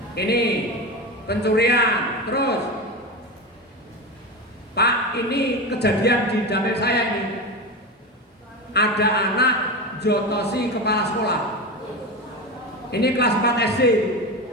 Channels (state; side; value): normal; both; correlation 0.22